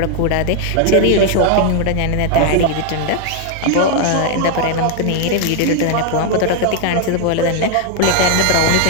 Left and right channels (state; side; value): different; both; correlation 0.00